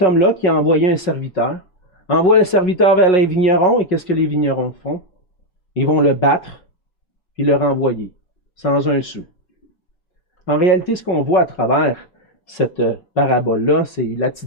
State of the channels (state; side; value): late; right; 5.4 ms